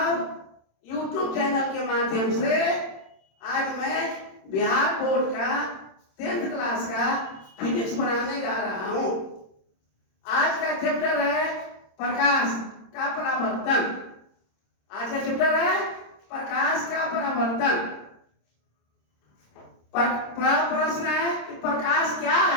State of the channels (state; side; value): late; right; 26 ms